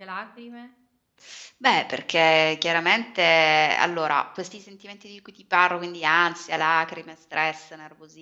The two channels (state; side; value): identical; both; correlation 1.00